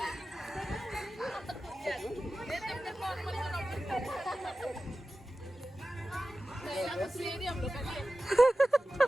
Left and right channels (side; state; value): both; normal; correlation 0.95